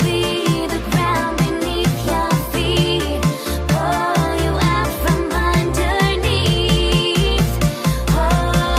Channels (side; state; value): both; identical; correlation 1.00